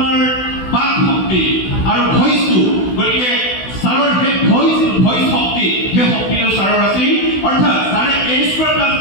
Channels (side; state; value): right; late; 16 ms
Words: বাক শক্তি আৰু ভইচটো। গতিকে ছাৰৰ সেই ভইচ শক্তি, সেই শক্তিটো ছাৰৰ আছিল। অৰ্থাৎ ছাৰে A² +